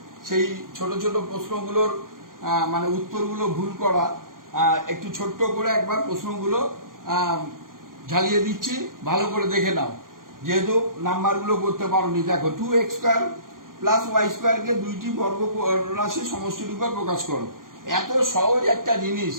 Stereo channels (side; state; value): left; late; 0.90 ms